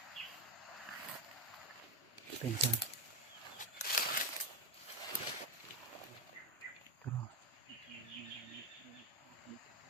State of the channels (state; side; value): normal; both; correlation 0.09